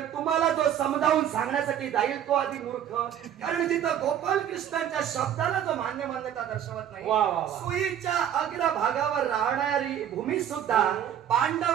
तुम्हाला जो समजावून सांगण्यासाठी जाईल तो आधी मूर्ख. कारण जिथं गोपाल कृष्णांच्या शब्दाला जो मान्यता दर्शवत नाही, वा, वा, वा. सुईच्या अग्रभागावर राहणारी भूमी सुद्धा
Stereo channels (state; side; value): quieter; left; 10.0 dB